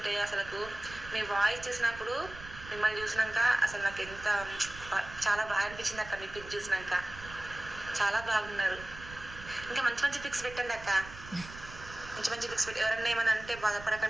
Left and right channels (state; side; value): noise; right; rumble, 15 dB below the sound